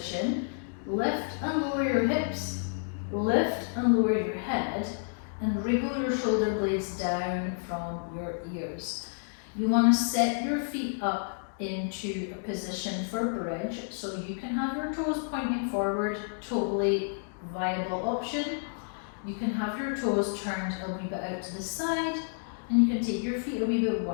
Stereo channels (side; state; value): right; silent; digital silence